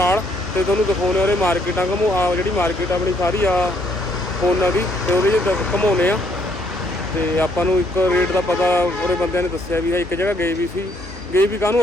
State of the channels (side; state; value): both; normal; correlation 0.69